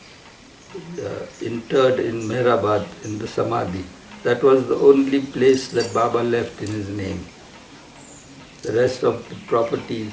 interred in Meherwan, in the Samadhi. That was the only place that Baba left in his name. The rest of the properties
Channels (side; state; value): both; identical; correlation 1.00